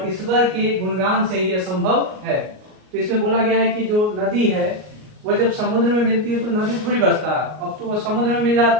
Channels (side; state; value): left; late; 38 ms